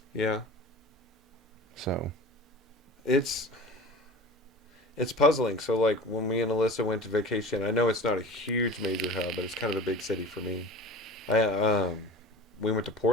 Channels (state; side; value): normal; both; correlation 0.37